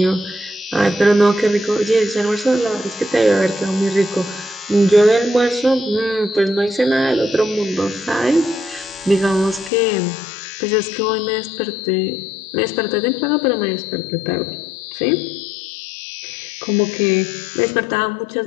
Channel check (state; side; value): drops out; right; at 9.7 s